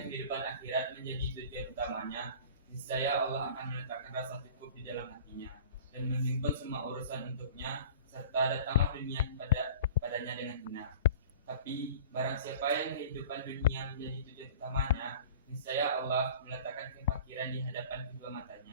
kehidupan akhirat menjadi tujuan utamanya, niscaya Allah akan meletakkan rasa cukup di dalam hatinya dan menghimpun semua urusan untuknya, serta datanglah dunia padanya dengan benar. Tapi barang siapa yang kehidupan dunia menjadi tujuan utamanya, niscaya Allah meletakkan kefakiran di hadapan kedua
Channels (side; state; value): both; inverted; correlation -0.43